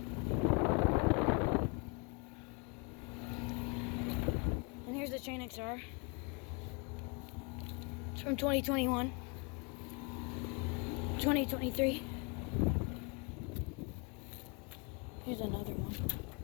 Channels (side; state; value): right; quieter; 31.9 dB